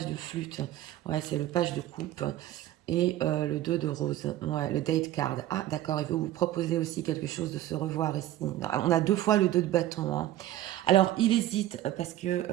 de flûte. Ouais, c'est le page de coupe. Et le 2 de rose. Ouais, le date card. Ah, d'accord, il veut vous proposer aussi quelque chose de se revoir ici. On a 2 fois le 2 de bâton. Hein. Alors, il hésite parce que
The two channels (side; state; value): left; quieter; 13.9 dB